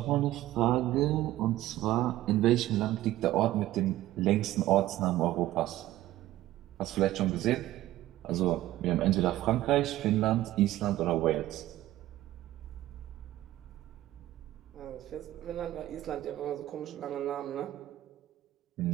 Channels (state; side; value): quieter; left; 14.9 dB